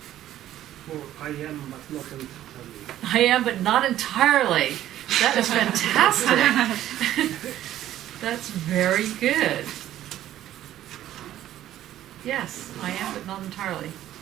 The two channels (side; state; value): left; quieter; 12.7 dB